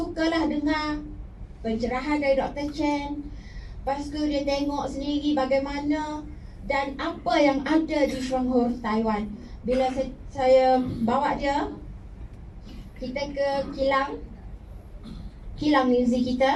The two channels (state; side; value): identical; both; correlation 1.00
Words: dengar pencerahan dari Dr. Chen. Lepas tu dia tengok sendiri bagaimana dan apa yang ada di Shuanghur, Taiwan. Bila saya bawa dia, kita ke kilang Linzi